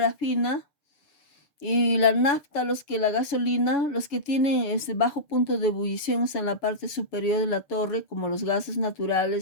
y la nafta, la gasolina, los que tienen ese bajo punto de ebullición están en la parte superior de la torre, como los gases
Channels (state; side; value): late; right; 6.7 ms